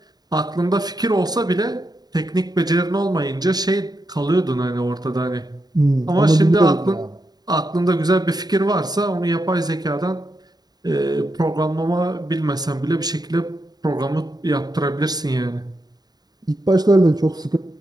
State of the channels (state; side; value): late; left; 0.19 ms